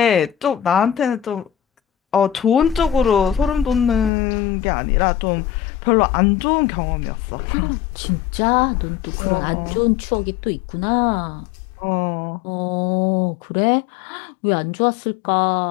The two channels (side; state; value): right; drops out; at 4.1 s